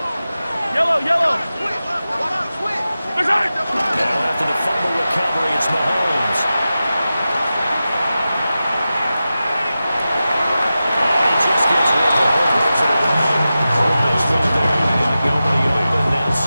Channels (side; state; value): both; inverted; correlation -0.93